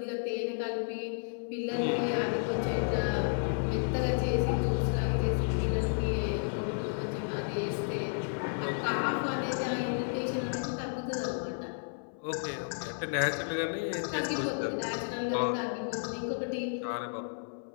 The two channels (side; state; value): right; silent; 56 dB below the other